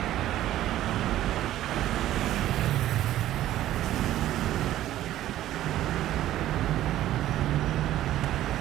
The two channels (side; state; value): left; quieter; 13.5 dB